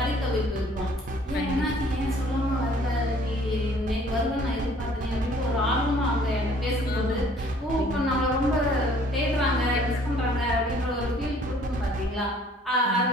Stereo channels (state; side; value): normal; both; correlation 0.57